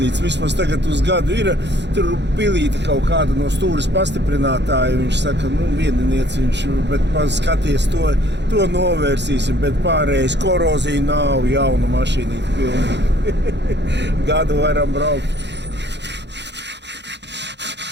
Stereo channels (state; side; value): late; left; 0.51 ms